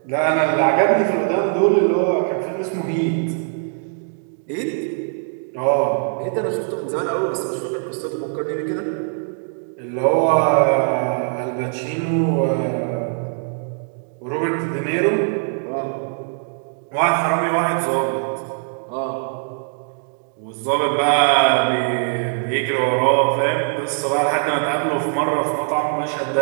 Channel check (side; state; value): left; silent; 65 dB below the other